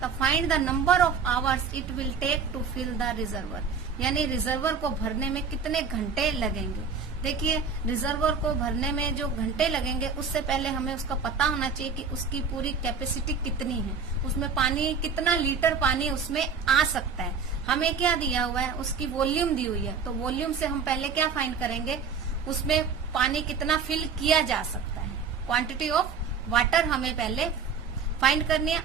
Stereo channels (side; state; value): left; quieter; 5.6 dB